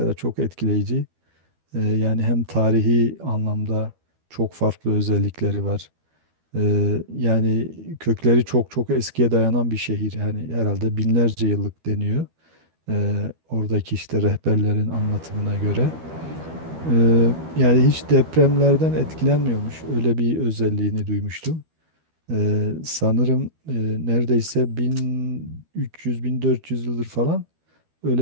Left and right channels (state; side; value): late; left; 12 ms